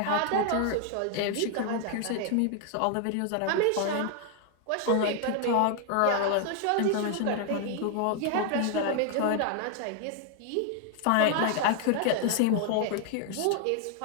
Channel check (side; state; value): both; different; correlation 0.00